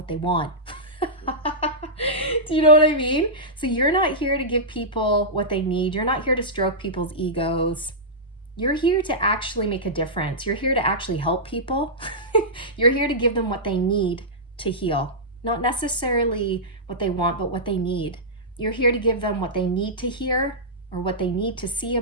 they want. Do you know what I mean? So you're not here to give people what they need. You're not here to stroke people's egos. You're here to actually make a difference. You're here to actually help people. You're here to give them what they need to heal. Not necessarily what they want, but what they need. You're here to give them what they need to hear, or what they need to see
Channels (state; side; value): normal; both; correlation -0.13